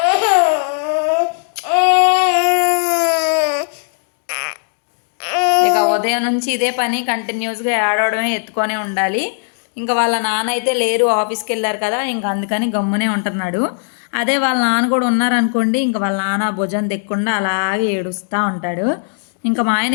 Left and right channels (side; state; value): right; silent; digital silence